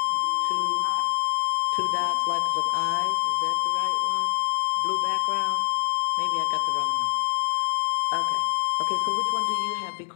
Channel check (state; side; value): silent; right; digital silence